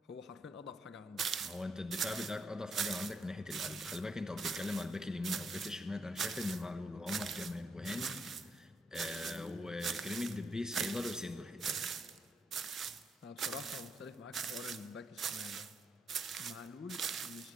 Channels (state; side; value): normal; both; correlation 0.77